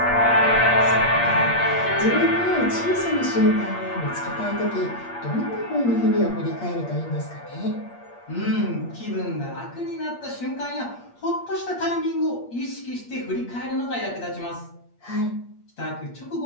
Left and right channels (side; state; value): right; late; 8.5 ms